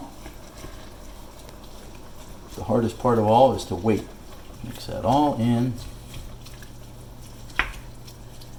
the hardest part of all is to wait. Mix that all in.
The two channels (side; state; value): both; identical; correlation 1.00